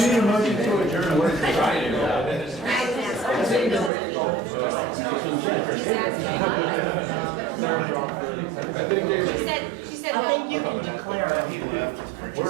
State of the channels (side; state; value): left; drops out; at 3.9 s